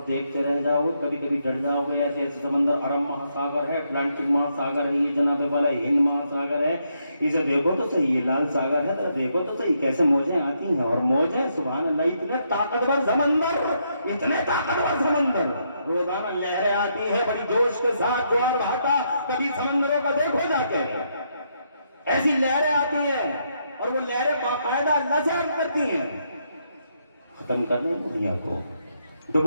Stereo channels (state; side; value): inverted; both; correlation -0.77